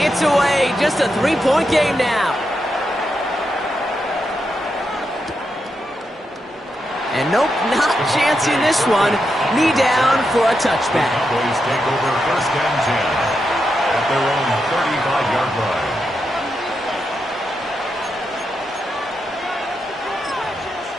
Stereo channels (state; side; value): normal; both; correlation 0.85